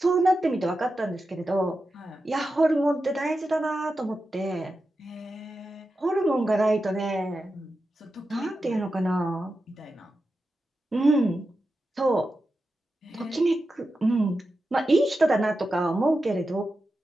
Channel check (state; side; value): normal; both; correlation 0.90